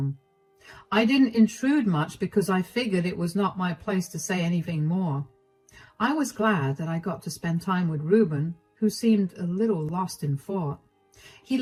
I didn't intrude much because I figured it was not my place to say anything more. I was glad that I got to spend time with Reuben, who seemed a little lost in thought. He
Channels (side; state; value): both; identical; correlation 1.00